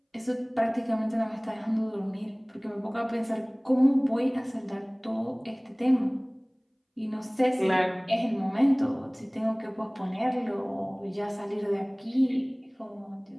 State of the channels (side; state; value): both; identical; correlation 1.00